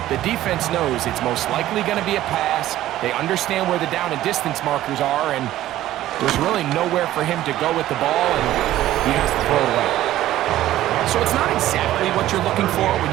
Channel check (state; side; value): quieter; left; 14.1 dB